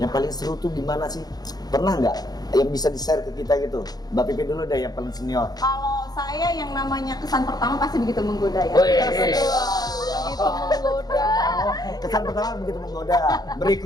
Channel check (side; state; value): right; late; 0.19 ms